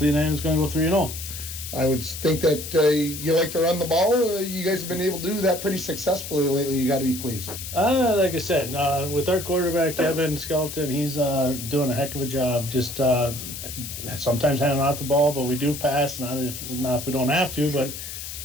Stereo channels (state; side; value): noise; left; hiss, 9 dB below the sound